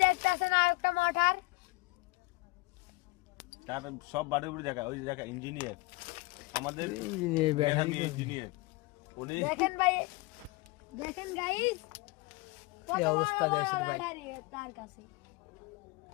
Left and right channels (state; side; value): quieter; right; 23.6 dB